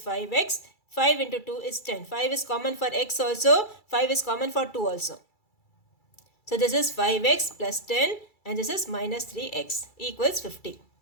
5x. 5 into 2 is 10. 5 is common for x also. 5 is common for 2 also. So this is 5x plus 10 and this is minus 3x equals 50.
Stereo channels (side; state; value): right; late; 2.3 ms